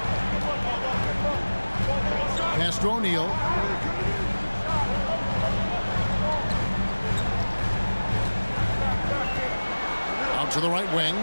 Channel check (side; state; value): both; inverted; correlation -1.00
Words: Pass to O'Neal. Out to the right wing.